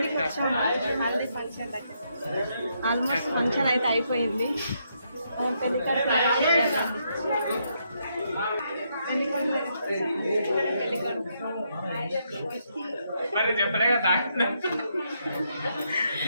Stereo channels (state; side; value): inverted; both; correlation -0.77